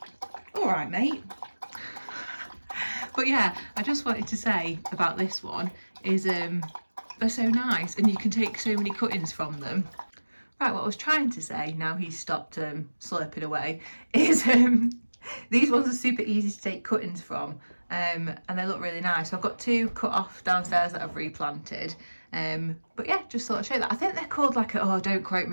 all right, mate. But yeah, I just wanted to say about this one is they're so nice and you can take so many cuttings from them. Right, what I was trying to say, now he's stopped slurping away, is these ones are super easy to take cuttings from and they look really nice. So I've got two cut off downstairs that I've replanted. But yeah, just thought I'd show you that. I think they're called like a, oh, don't quote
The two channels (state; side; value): inverted; both; correlation -1.00